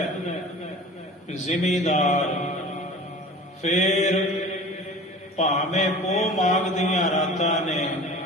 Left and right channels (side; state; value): both; normal; correlation 0.40